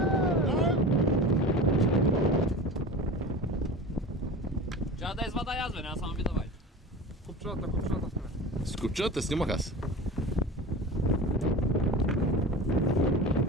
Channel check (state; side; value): normal; both; correlation 0.32